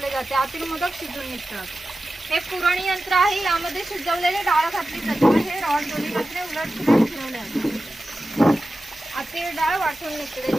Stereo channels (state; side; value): normal; both; correlation 0.94